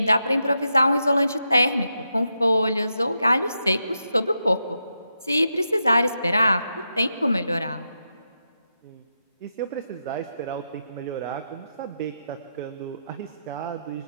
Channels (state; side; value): inverted; both; correlation -0.86